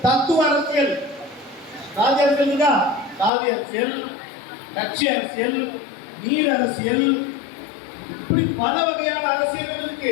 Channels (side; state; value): right; drops out; at 3.3 s